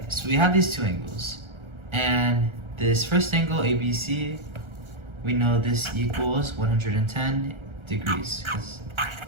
so we have these two angles. And this first angle, ABC, we know this equals 110 degrees.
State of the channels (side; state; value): left; late; 1.3 ms